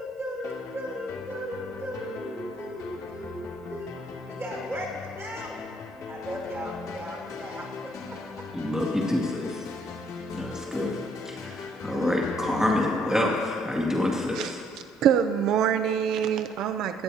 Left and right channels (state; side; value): normal; both; correlation 0.66